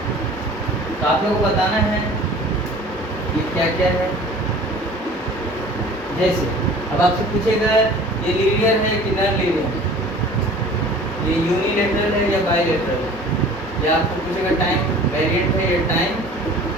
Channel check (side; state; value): both; normal; correlation 0.45